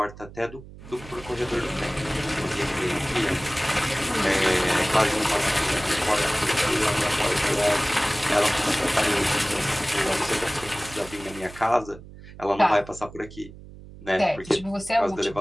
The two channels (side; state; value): right; noise; hum, 17 dB below the sound